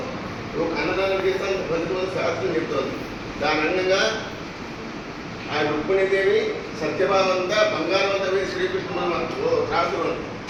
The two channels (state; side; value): identical; both; correlation 1.00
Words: ఒక అన్నదానం చేస్తాను ఫలితం శాస్త్రం చెప్తోంది. దాని అందంగా ఆ రుక్మిణీదేవి సత్యభావంతా బంగారం అంతా వేసి శ్రీకృష్ణుడు రాసులు